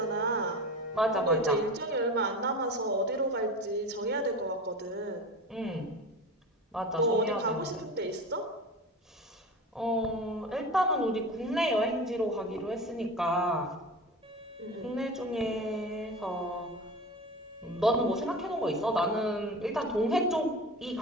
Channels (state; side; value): normal; both; correlation 0.31